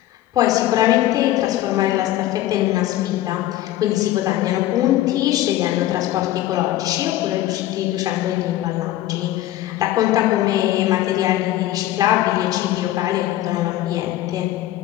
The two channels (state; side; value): quieter; right; 14.3 dB